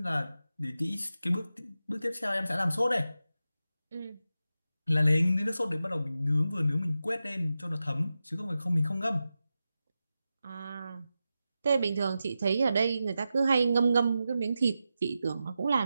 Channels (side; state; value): both; inverted; correlation -0.91